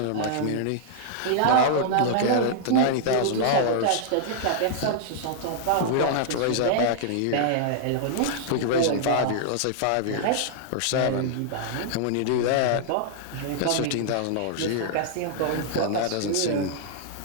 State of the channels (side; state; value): both; different; correlation -0.01